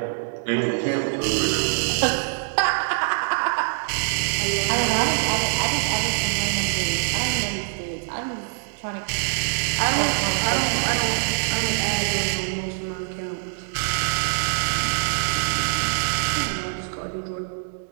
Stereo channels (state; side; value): silent; left; digital silence